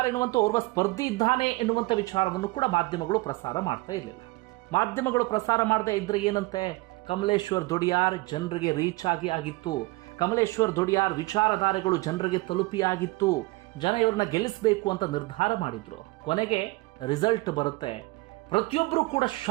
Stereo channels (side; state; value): left; quieter; 23.1 dB